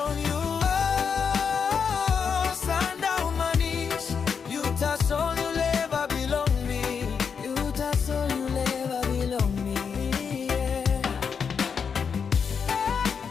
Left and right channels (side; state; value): right; quieter; 6.4 dB